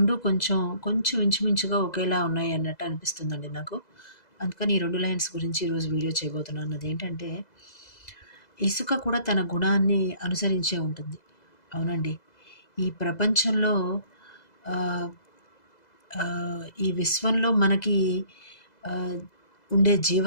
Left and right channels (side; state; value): right; late; 2.0 ms